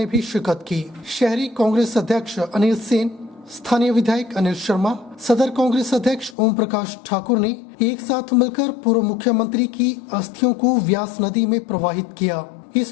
भी शिरकत की। शहरी कांग्रेस अध्यक्ष अनिल सेन, स्थानीय विधायक अनिल शर्मा, सदर कांग्रेस अध्यक्ष ओम प्रकाश ठाकुर ने एक साथ मिलकर पूर्व मुख्यमंत्री की अस्थियों को व्यास नदी में प्रवाहित किया।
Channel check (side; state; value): right; drops out; at 6.4 s